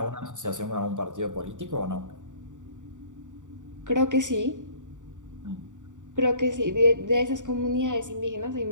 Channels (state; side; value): late; left; 0.86 ms